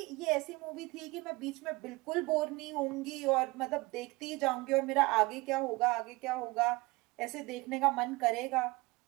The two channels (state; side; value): quieter; left; 22.8 dB